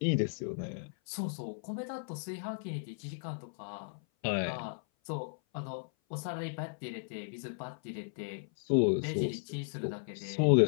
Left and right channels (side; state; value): right; silent; 54 dB below the other